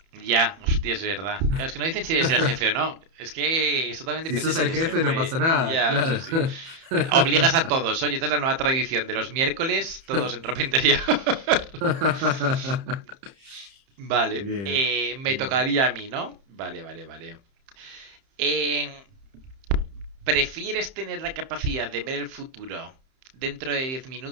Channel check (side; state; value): left; late; 30 ms